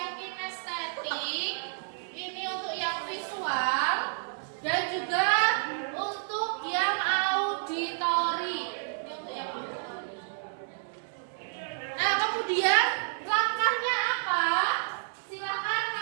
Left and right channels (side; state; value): left; silent; 58 dB below the other